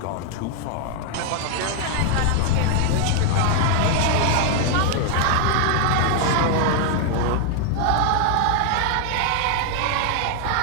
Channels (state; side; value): different; both; correlation 0.00